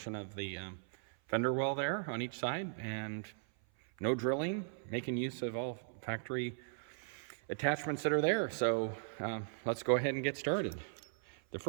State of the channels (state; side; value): silent; left; 52 dB below the other